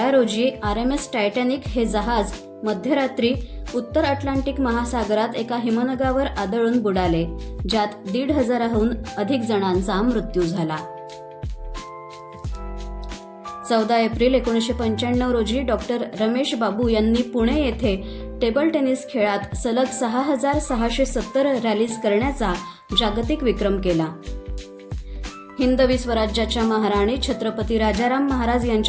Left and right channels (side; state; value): both; identical; correlation 1.00